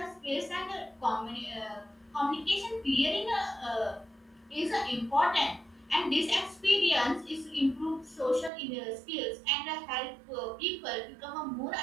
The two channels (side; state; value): left; drops out; at 8.5 s